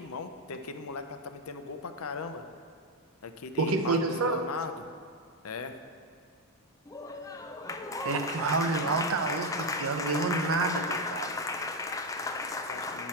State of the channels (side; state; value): both; normal; correlation 0.06